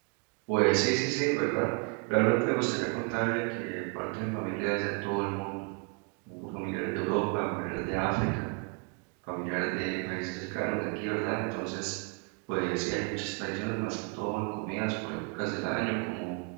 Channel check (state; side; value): quieter; left; 36.8 dB